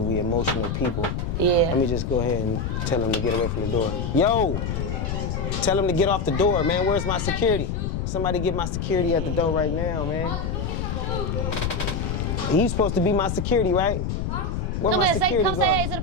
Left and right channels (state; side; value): noise; left; rumble, 2 dB below the sound